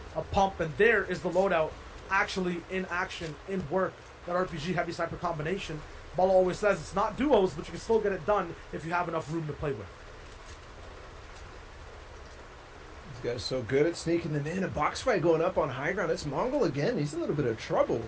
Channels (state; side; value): identical; both; correlation 1.00